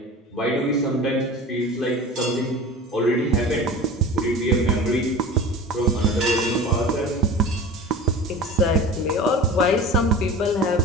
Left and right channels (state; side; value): normal; both; correlation 0.35